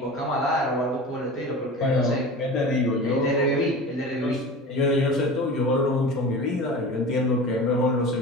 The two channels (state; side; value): normal; both; correlation 0.34